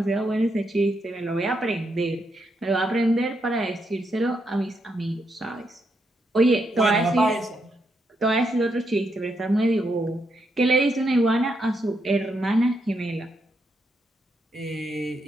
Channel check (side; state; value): both; normal; correlation 0.80